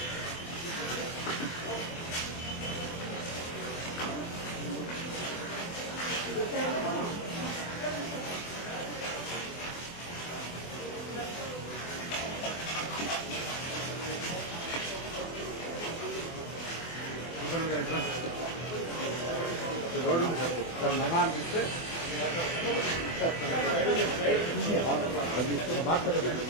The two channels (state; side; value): late; right; 24 ms